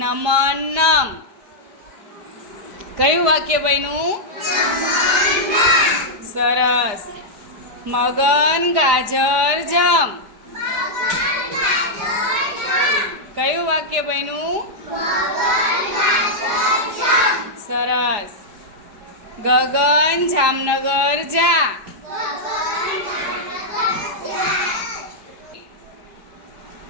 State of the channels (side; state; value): left; late; 5.0 ms